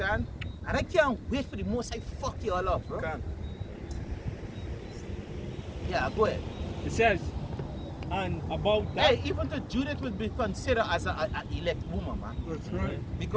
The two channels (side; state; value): both; identical; correlation 1.00